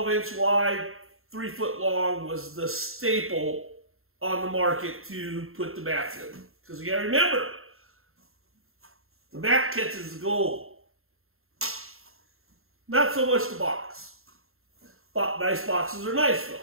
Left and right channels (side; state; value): left; late; 0.61 ms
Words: inch wide, 3 foot long was the staple on the market to put the mats in. Because you gotta remember, the mat catches the gold. Not so much the box. Nice boxes are nice